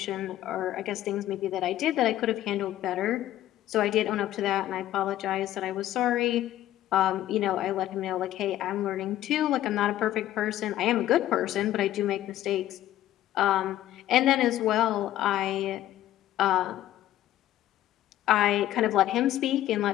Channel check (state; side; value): quieter; right; 13.5 dB